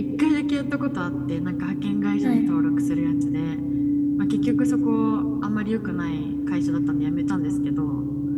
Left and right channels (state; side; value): identical; both; correlation 1.00